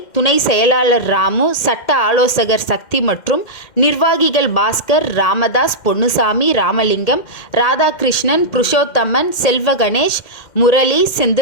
துணை செயலாளர் ராமு, சட்ட ஆலோசகர் சக்தி மற்றும் நிர்வாகிகள் பாஸ்கர், ராமதாஸ், பொன்னுசாமி, ராமலிங்கம், ராதாகிருஷ்ணன், புருஷோத்தமன், செல்வ கணேஷ், முரளி,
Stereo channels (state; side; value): late; right; 2.1 ms